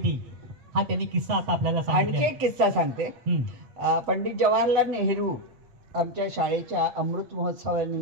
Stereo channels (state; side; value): late; left; 7.9 ms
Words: हा त्यांनी किस्सा आता आपल्याला सांगितला. आणखी एक किस्सा सांगते. पंडित जवाहरलाल नेहरू आमच्या शाळेच्या अमृत